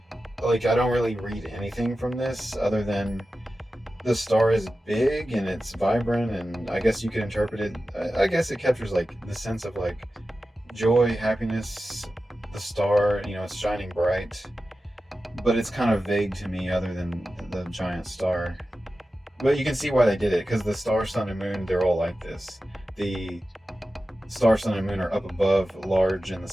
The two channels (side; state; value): both; normal; correlation 0.93